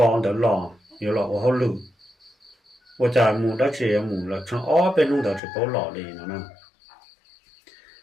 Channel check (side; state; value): right; drops out; at 5.4 s